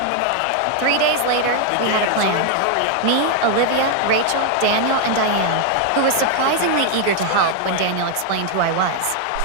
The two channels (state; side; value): different; both; correlation 0.00